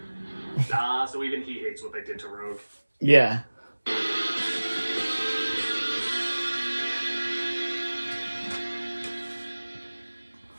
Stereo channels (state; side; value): inverted; both; correlation -1.00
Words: So even he hates what they did to Rogue. Yeah.